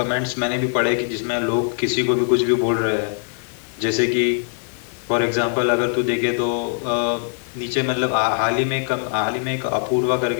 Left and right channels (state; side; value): silent; right; digital silence